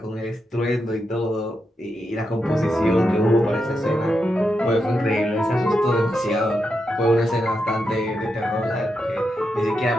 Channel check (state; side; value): normal; both; correlation 0.85